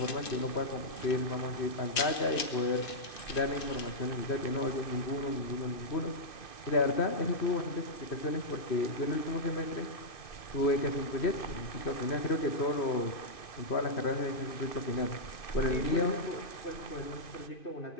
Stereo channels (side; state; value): right; late; 2.5 ms